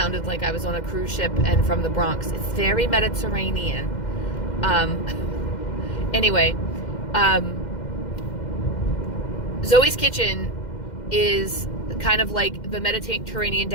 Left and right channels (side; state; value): right; late; 2.1 ms